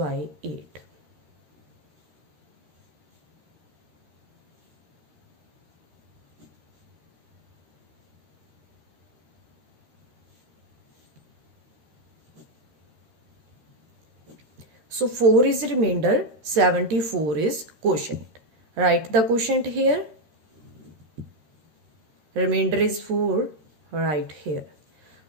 8। So 4 is remainder, 74 is quotient. Write the quotient here. Remainder is 4, right here.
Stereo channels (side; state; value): left; late; 13 ms